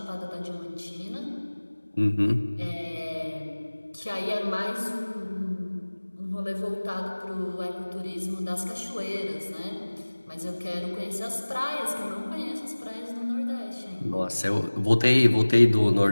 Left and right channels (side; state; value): both; inverted; correlation -1.00